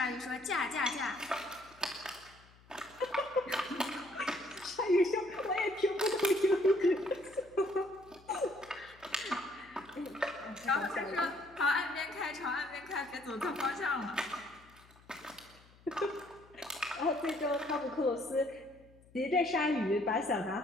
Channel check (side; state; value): left; noise; hum, 26 dB below the sound